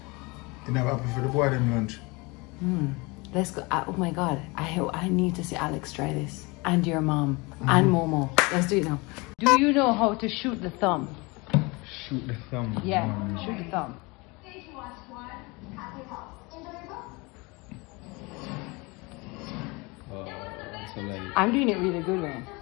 You have apple for the boy them lunch. Let's go. Oh my God, I need to see Alex try this. And your mom. And Momo. Let's do it now. Do you know how to shoot the thumb? Shoot the thumb. Yeah, shoot the thumb. So like... I'm doing it really good, man.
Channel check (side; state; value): right; quieter; 26.0 dB